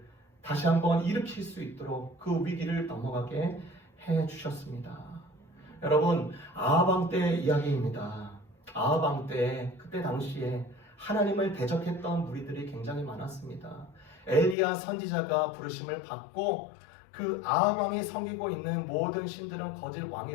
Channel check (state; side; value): drops out; right; at 14.6 s